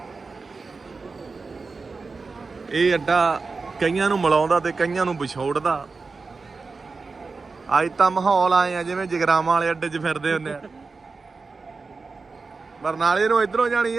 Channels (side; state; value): left; quieter; 4.2 dB